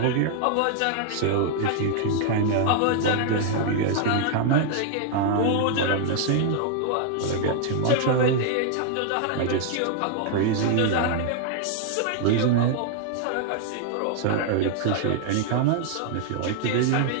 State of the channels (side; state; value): both; different; correlation 0.00